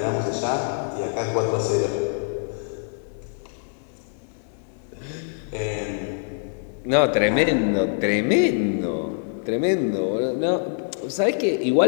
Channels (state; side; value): silent; right; digital silence